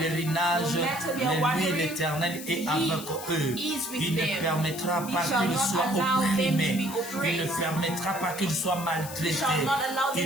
no matter their mais lui, wandering, l'Éternel, est He avec eux. is with Il ne them. permettra He pas shall qu'ils not soient allow them to opprimés. be Il ne oppressed. permettra pas qu'ils soient He maltraités. shall not allow them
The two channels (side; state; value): left; noise; hiss, 11 dB below the sound